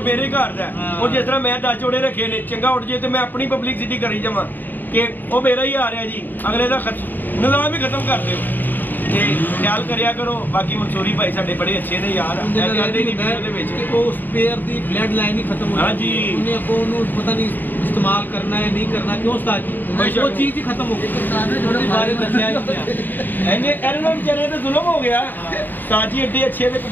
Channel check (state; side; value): late; right; 0.090 ms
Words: ਘਰ ਦਾ ਉਹ ਜਿਸ ਤਰ੍ਹਾਂ ਮੈਂ 10 ਜੋੜੇ ਰੱਖੇ ਨੇ ਚੰਗਾ ਉੱਡ ਜੇ ਤੇ ਮੈਂ ਆਪਣੀ ਪਬਲਿਸਿਟੀ ਕਰੀ ਜਾਵਾਂ ਕਿ ਉਹ ਮੇਰਾ ਹੀ ਆ ਰਿਹਾ ਜੀ ਅਗਲੇ ਦਾ ਨਿਜ਼ਾਮ ਹੀ ਖਤਮ ਕਰ ਦਿਓ ਤੇ ਖਿਆਲ ਕਰਿਆ ਕਰੋ। ਬਾਕੀ ਮਨਸੂਰੀ ਭਾਈ ਸਾਡੇ ਬੜੇ ਅੱਛੇ ਨੇ ਯਾਰ ਉਹਦੇ ਵਿੱਚ ਉਹ ਸਪੇਅਰ ਦੀ ਬਲੱਡ ਲਾਈਨ ਹੀ ਖਤਮ ਹੋ ਗਈ। ਹਾਂਜੀ ਉਹਨੇ ਅੱਗੋਂ ਉਹਨੂੰ ਪਤਾ ਨਹੀਂ ਇਸਤੇਮਾਲ ਕਰਨਾ ਹੈ ਨਹੀਂ ਕਰਨਾ ਕਿਉਂ ਉਸਤਾਦ ਜੀ ਉਹ ਚੀਜ਼ ਹੀ ਖਤਮ ਹੋ ਗਈ ਉਹਦੇ ਬਾਰੇ ਦੱਸਿਆ ਹੀ ਨਹੀਂ। ਇਹਨਾਂ ਨੂੰ ਵਿਚਾਰੇ ਤੇ ਜ਼ੁਲਮ ਹੋ ਗਿਆ। ਸਾਜੀ ਐਡੇ ਅੱਛੇ ਦੇ